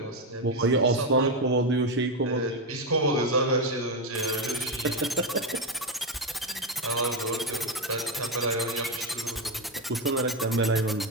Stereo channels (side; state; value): both; normal; correlation 0.09